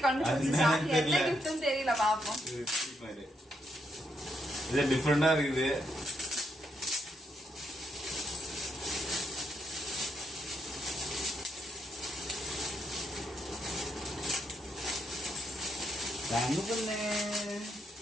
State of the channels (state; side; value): normal; both; correlation 0.78